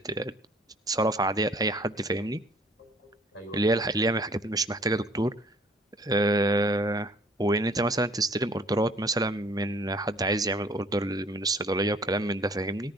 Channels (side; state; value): both; normal; correlation 0.56